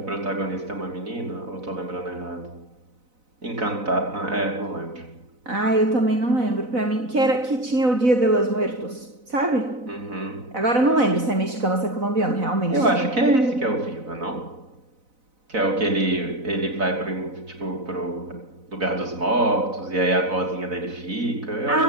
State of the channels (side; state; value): left; late; 4.0 ms